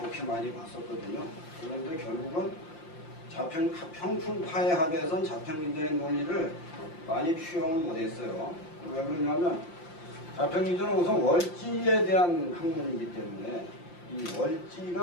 많이 봤었거든요. 그런데 결국은 형충파해합에선 자평진전의 논리를 많이 취용을 못했어요. 왜 그러냐면 자평진전은 우선 월지에 대한 학문이기 때문에 이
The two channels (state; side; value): late; right; 5.8 ms